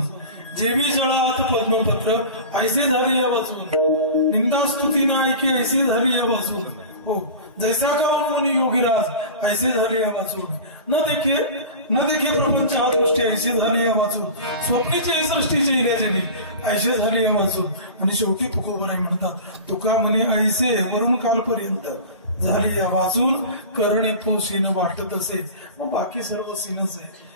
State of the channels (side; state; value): both; inverted; correlation -0.34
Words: जेवी जळात पद्मपत्र, ऐसे झाले या वाचून, निंदा स्तुती ना ऐके, ऐसे झाले या वाचून, हो जैसा का मुनी योगीराज, ऐसे झाले या वाचून, न देखे प्रपंच हा दृष्टी, ऐसे झाले या वाचून, स्वप्नीचे सृष्टीचे इल्याचे ऐसे झाले या वाचून, आणि शेवटी तुकोबराय म्हणतात, तुका म्हणे ऐसे वरून कालपर्यंत झाले या वाचून, करणे तो सीन वाटत असे. मग बाकी सर्व सीनच आहे.